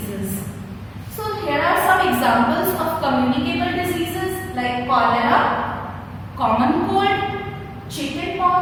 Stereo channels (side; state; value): both; identical; correlation 1.00